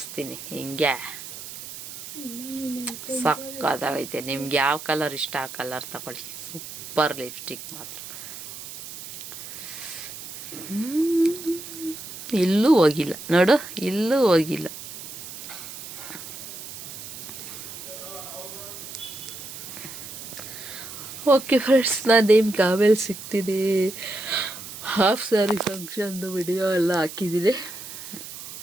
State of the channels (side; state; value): right; noise; hiss, 11 dB below the sound